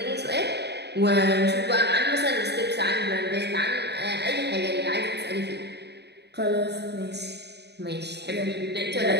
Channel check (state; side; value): late; left; 0.49 ms